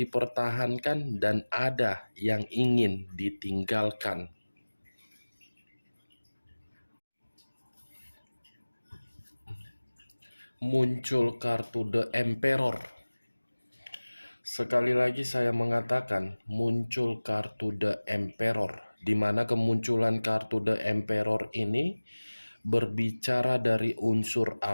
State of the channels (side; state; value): both; inverted; correlation -1.00